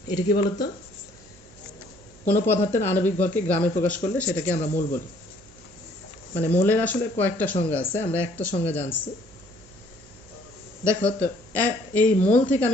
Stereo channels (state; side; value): noise; right; hum, 26 dB below the sound